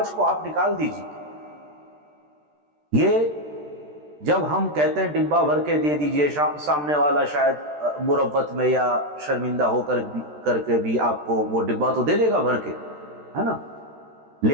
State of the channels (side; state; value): left; late; 13 ms